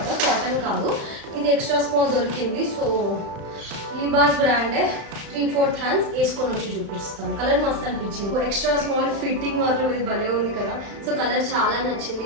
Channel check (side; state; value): left; late; 35 ms